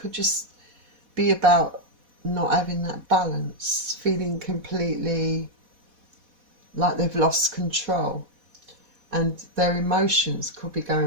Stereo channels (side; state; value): left; late; 4.1 ms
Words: just be about not having that balance, feeling completely like they've lost control, and their emotions could be